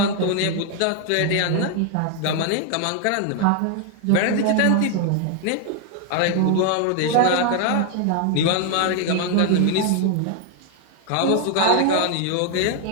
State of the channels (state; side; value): different; both; correlation 0.00